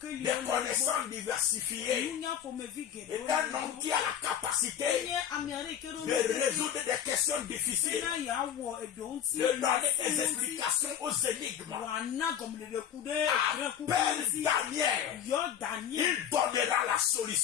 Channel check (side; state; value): right; quieter; 9.3 dB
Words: des connaissances diversifiées. Et un homme qui a la capacité de résoudre des questions difficiles, de donner des explications passer aux énigmes. Appelle Daniel. Il donnera la